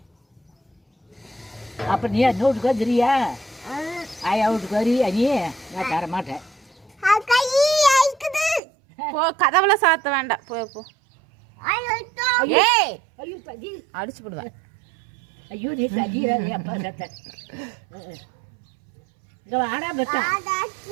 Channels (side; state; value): left; drops out; at 8.6 s